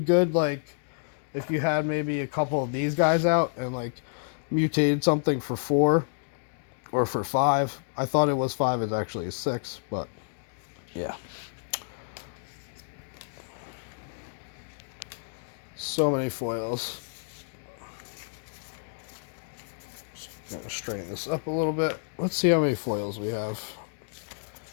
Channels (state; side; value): silent; right; digital silence